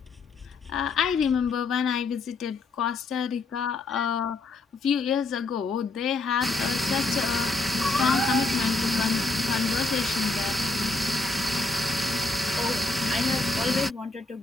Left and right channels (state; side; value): quieter; right; 3.4 dB